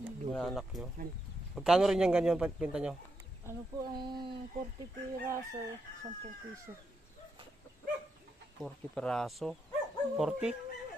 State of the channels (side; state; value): both; normal; correlation 0.82